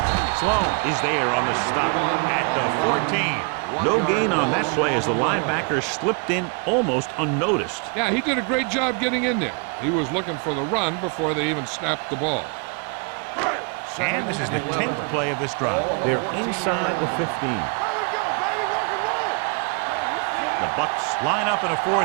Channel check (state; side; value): quieter; left; 35.5 dB